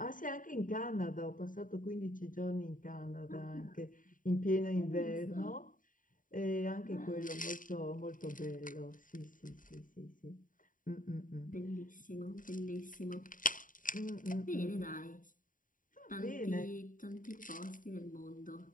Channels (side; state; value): right; late; 0.39 ms